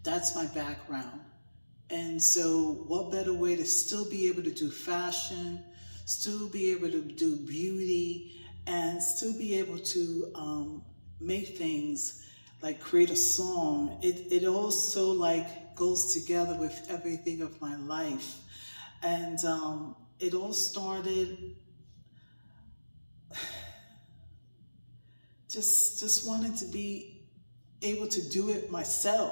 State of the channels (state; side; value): inverted; both; correlation -1.00